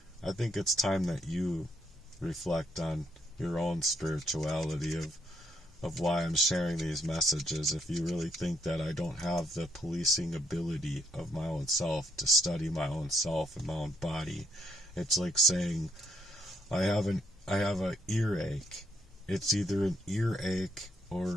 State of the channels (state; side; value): normal; both; correlation 0.74